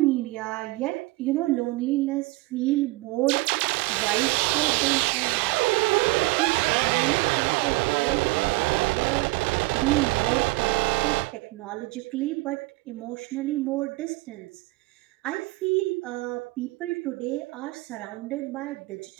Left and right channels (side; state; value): left; quieter; 22.0 dB